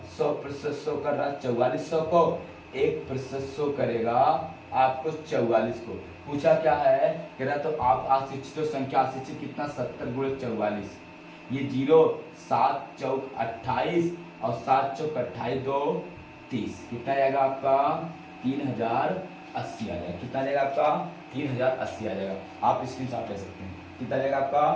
100% शो कर रहा 4400 को, 1% शो करेगा आपको 44 को। पूछा क्या है, कह रहा तो आप अशिक्षित संख्या, अशिक्षित कितना 70 गुणे 44, ये 0 7 चौक 28 और 7 चौक 28 2 30, कितना जाएगा आपका 3080 आ जाएगा। कितना जाएगा आपका 3080 आ जाएगा। आप स्क्रीन शॉट ले सकते हैं, कितना जाएगा आपका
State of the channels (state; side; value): identical; both; correlation 1.00